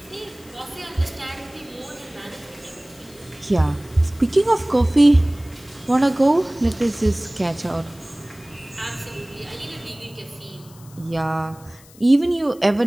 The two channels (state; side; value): noise; left; hiss, 24 dB below the sound